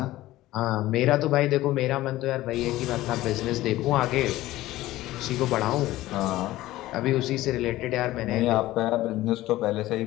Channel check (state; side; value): quieter; right; 16.4 dB